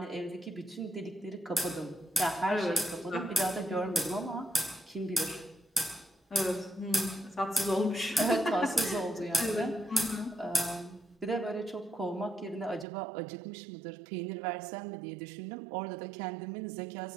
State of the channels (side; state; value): left; drops out; at 12.9 s